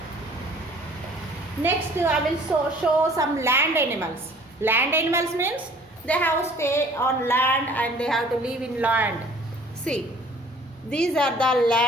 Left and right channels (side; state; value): both; normal; correlation 0.52